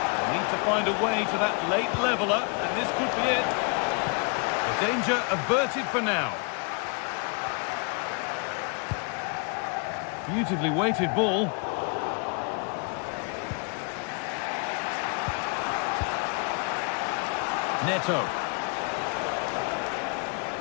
Need to find a way to that late leveller, and this could be it. The danger averted for now. Beautifully weighted ball. Neto.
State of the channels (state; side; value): quieter; right; 34.7 dB